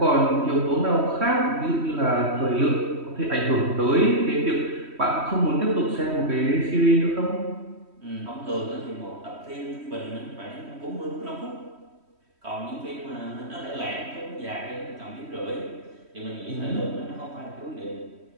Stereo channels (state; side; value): late; left; 3.1 ms